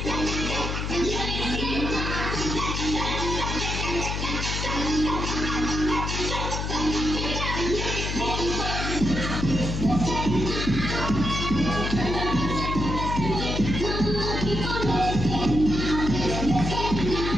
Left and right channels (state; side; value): noise; left; hum, 2 dB below the sound